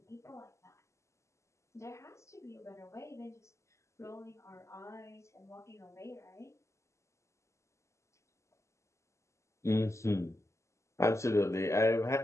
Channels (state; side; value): late; right; 0.14 ms